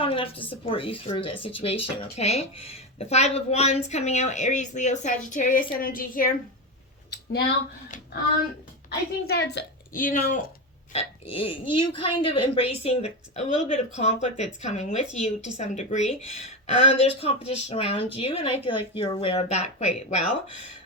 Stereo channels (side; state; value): both; normal; correlation 0.16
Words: enough to support you through this situation, okay? The Five of Wands coming out, Aries, Leo, Sagittarius energy here. Now, I think that's, you kind of embracing a little bit of conflict that's coming with you to some degree. There's competition around you, and I feel like you're aware of that quite well.